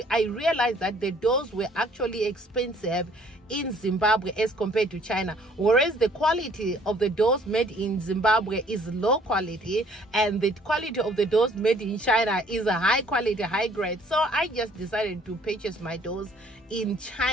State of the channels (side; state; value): both; normal; correlation 0.59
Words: I realized that the doors were actually expensive in Zimbabwe as compared to China, whereas the quality of the doors made in Zimbabwe is low quality and the quality of the doors made in China is a high quality, high grade. So I just decided to purchase my doors in